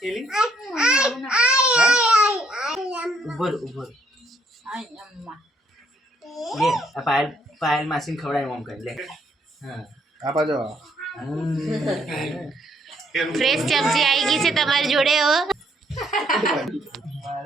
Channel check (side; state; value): both; normal; correlation 0.69